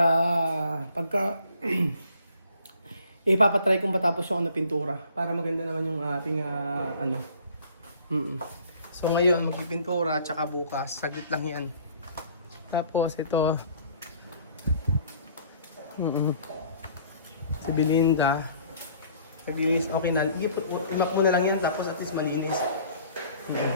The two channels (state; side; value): inverted; both; correlation -0.55